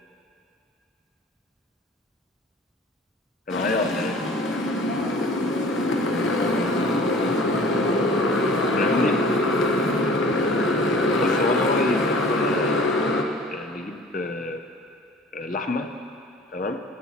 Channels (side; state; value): both; normal; correlation 0.47